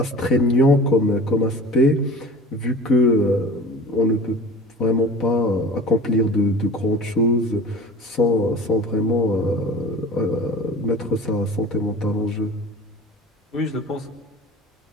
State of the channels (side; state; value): both; normal; correlation 0.39